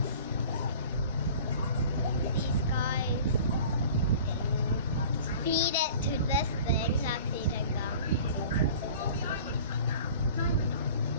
These guys. Feed it to this thing that's eating them.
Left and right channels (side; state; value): both; inverted; correlation -0.44